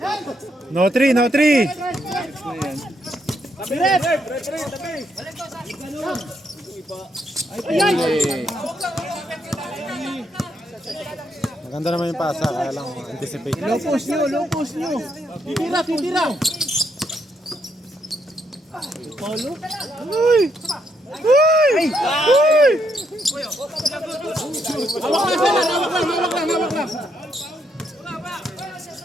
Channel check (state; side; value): normal; both; correlation 0.76